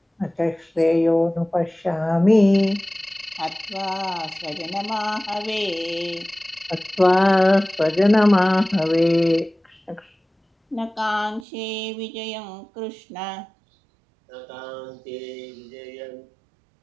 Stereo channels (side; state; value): left; drops out; at 11.5 s